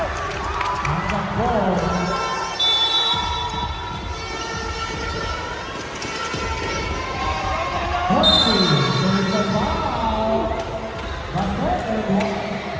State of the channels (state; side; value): identical; both; correlation 1.00